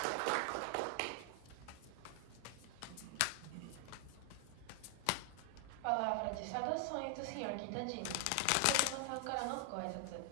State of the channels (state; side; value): different; both; correlation 0.00